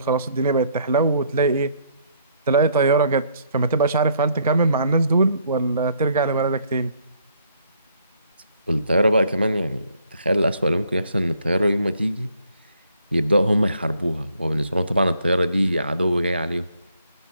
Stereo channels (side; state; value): both; inverted; correlation -0.66